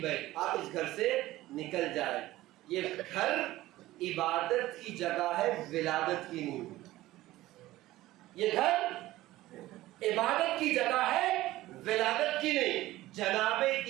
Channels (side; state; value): left; quieter; 16.6 dB